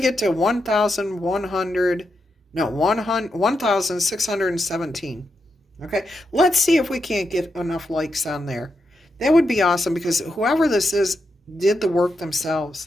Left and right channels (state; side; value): normal; both; correlation 0.85